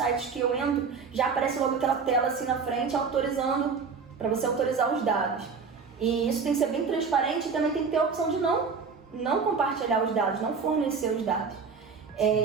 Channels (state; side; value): quieter; left; 5.3 dB